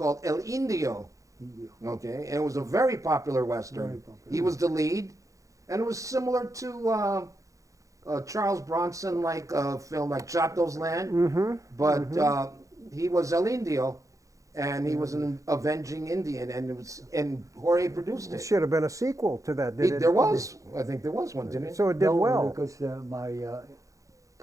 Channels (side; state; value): left; late; 0.16 ms